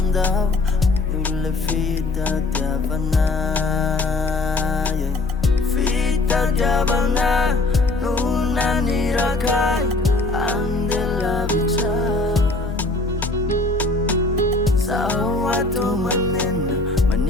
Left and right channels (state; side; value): quieter; right; 3.2 dB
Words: olona fitadiavana fitadiavana no nanirakay andeha lavitra sao ato manena